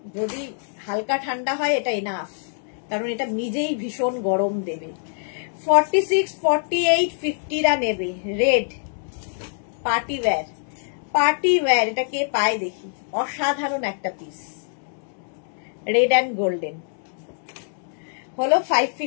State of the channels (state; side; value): silent; right; digital silence